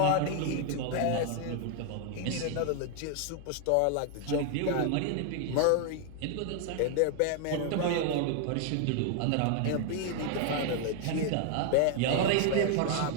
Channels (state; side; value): different; both; correlation 0.00